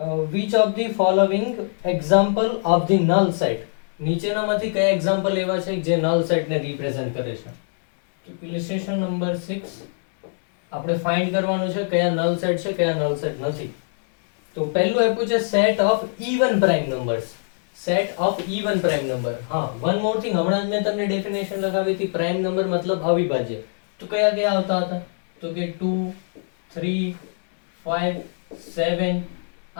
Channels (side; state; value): right; silent; 64 dB below the other